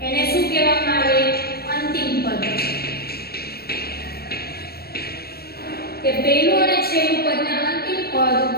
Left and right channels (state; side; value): late; right; 0.45 ms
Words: એને શું કહેવામાં આવે? અંતિમ પદ. કે પહેલું અને છેલ્લું પદને અંતિમ પદ,